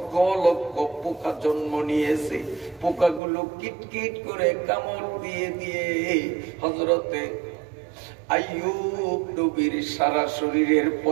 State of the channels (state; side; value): drops out; left; at 3.2 s